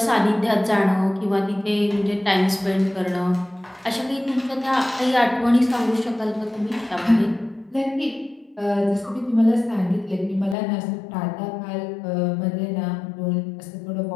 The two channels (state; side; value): drops out; right; at 10.6 s